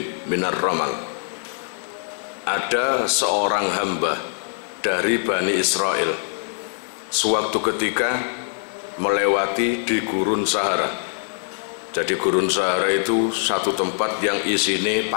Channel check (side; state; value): right; silent; digital silence